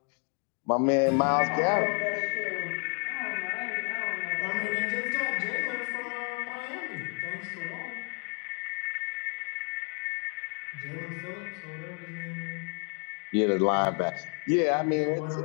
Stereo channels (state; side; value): quieter; right; 38.2 dB